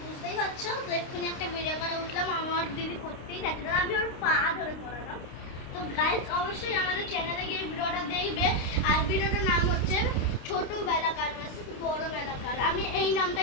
পারছো, তো এক্ষুনি একটা ভিডিও করা উঠলাম, আমার দিদি করতেই যাচ্ছে না, আমি ওর পা ধরে করালাম। তো গাইস অবশ্যই আমাদের চ্যানেলে গিয়ে ভিডিওটা দেখবে। আর ভিডিওটার নাম হচ্ছে ছোট বেলাকার ভার্সেস বড় বেলাকার। আমি এই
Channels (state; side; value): late; right; 29 ms